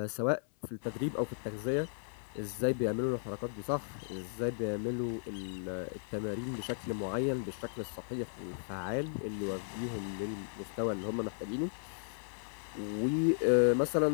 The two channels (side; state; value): right; silent; 54 dB below the other